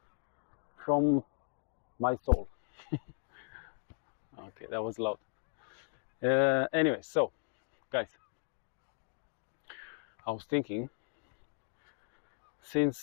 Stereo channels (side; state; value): right; silent; digital silence